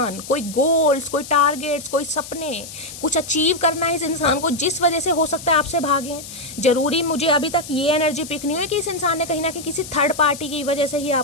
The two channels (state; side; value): noise; left; hiss, 13 dB below the sound